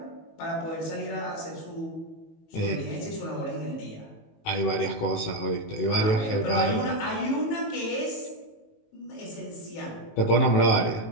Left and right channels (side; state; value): right; late; 19 ms